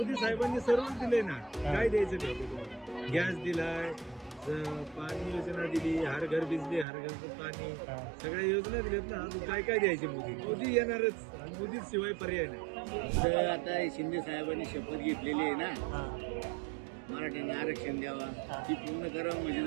साहेबांनी सर्व दिले ना. काय द्यायचं ठरवलं? गॅस दिलाय, पाणी योजना दिली, हर घर बिजली, हर घर पाणी, सगळ्या योजना दिल्यात ना. अजून काय काय द्यायचे? मोदी येणारच, मोदी शिवाय पर्याय नाही. तर आता शिंदे साहेबांनी शपथ घेतलेली आहे ना, मराठ्यांना आरक्षण द्यावा, ती पूर्ण करावं म्हणजे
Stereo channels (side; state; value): left; drops out; at 6.9 s